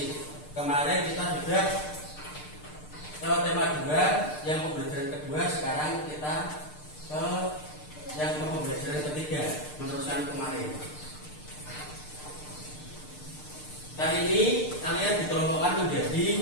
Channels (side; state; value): right; late; 6.7 ms